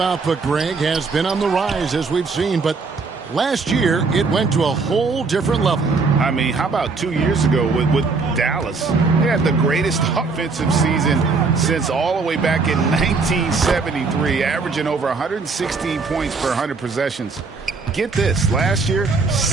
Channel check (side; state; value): left; quieter; 4.3 dB